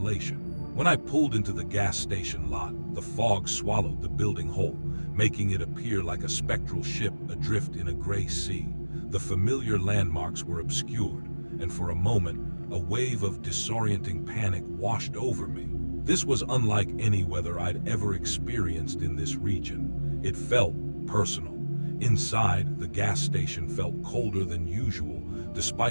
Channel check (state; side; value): inverted; both; correlation -1.00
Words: When I pulled into the gas station lot, the fog swallowed the building whole, making it appear like a spectral ship adrift in a gray sea. The familiar landmarks were obscured, and for a moment, a wave of disorienting panic washed over me. This was unlike any weather I'd ever experienced in this region. It felt personal. Inside, the gas station felt colder than usual,